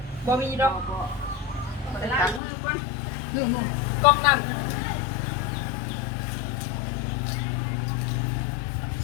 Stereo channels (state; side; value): drops out; right; at 2.4 s